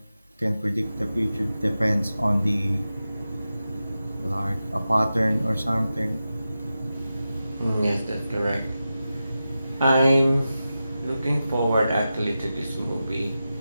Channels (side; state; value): both; inverted; correlation -0.92